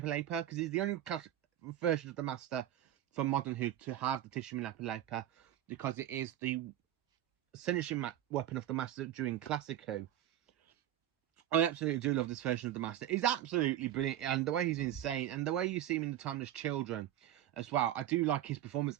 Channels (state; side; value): quieter; left; 12.1 dB